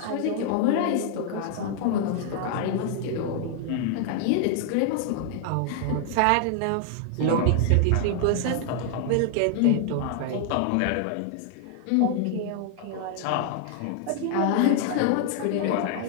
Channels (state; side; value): different; both; correlation 0.00